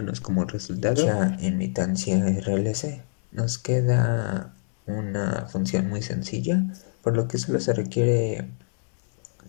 como resultado ya imitancia RLC. Nos queda una función muy sencilla, por lo que solo se requiere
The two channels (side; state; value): right; silent; 61 dB below the other